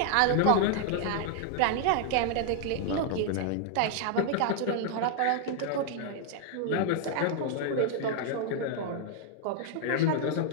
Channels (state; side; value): different; both; correlation 0.00